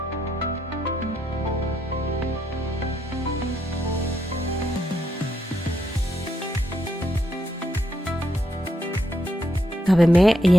ဒါပေမဲ့အရ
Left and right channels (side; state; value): both; normal; correlation 0.78